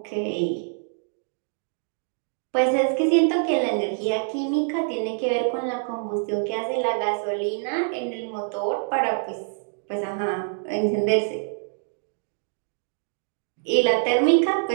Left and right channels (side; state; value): left; silent; digital silence